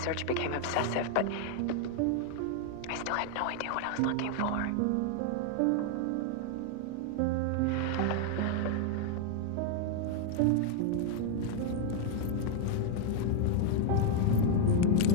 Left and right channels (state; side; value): different; both; correlation 0.00